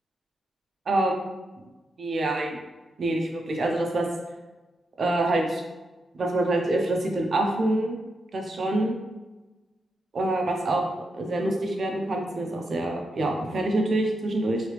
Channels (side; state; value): both; normal; correlation 0.84